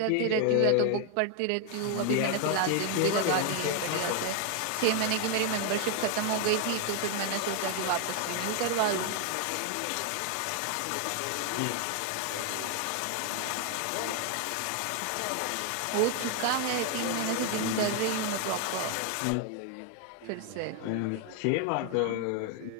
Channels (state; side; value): different; both; correlation 0.01